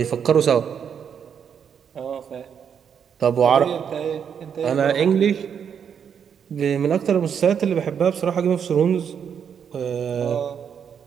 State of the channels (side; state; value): left; quieter; 7.6 dB